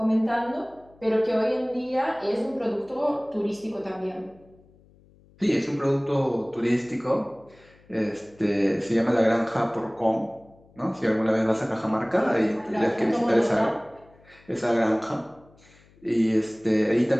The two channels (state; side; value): noise; left; hum, 28 dB below the sound